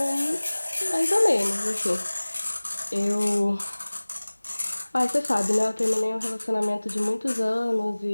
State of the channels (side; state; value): both; inverted; correlation -1.00